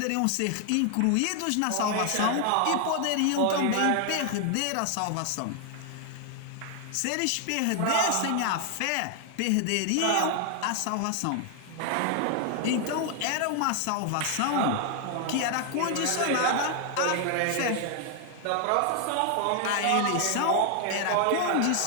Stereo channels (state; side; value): different; both; correlation 0.00